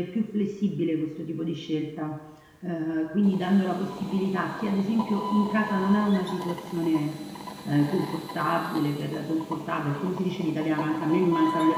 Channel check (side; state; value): both; identical; correlation 1.00